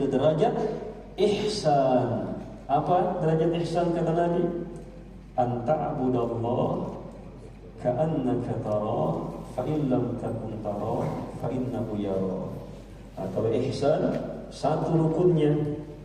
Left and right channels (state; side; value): identical; both; correlation 1.00